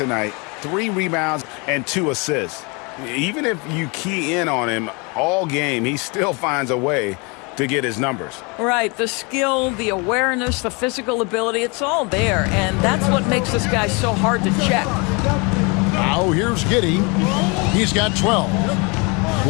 night, 3 rebounds, and 2 assists. Even if you key in on him all game, he still finds a way to get his numbers. Right, the skill, the awareness, the physical ability, it's all there, and that's what makes this guy so hard to check. Now here's Giddey. He's got 12.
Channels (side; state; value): right; quieter; 30.2 dB